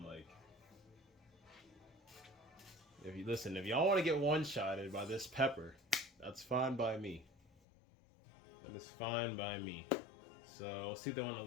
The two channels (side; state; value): right; drops out; at 7.5 s